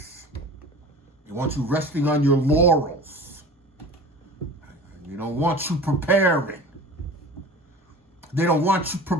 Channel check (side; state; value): both; normal; correlation 0.39